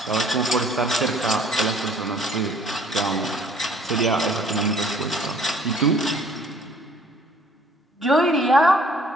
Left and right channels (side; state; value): both; normal; correlation 0.56